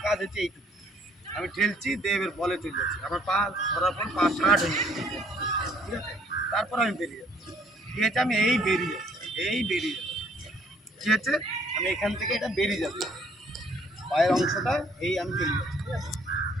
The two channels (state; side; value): normal; both; correlation 0.62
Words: কাজ হচ্ছে এইটুকু আমি ঠেলছি, দেবের বলে চলে যাচ্ছি, আমার পা ধরার পর পা শার্ট হয়ে যাচ্ছে। ঠিক আছে, তারপর আমি বেরিয়ে যাচ্ছি। ঠিক আছে, আমি এই বেরিয়ে যাচ্ছি, এই বেরিয়ে যাচ্ছি। ঠিক আছে, আমি এখান থেকে এটা বেরিয়ে যাচ্ছি, পায়ের অংশটা এই আমি চলে যাচ্ছি। ঠিক আছে,